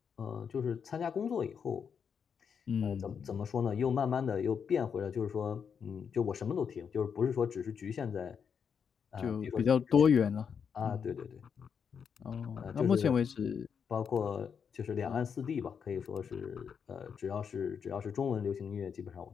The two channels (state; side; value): quieter; right; 6.9 dB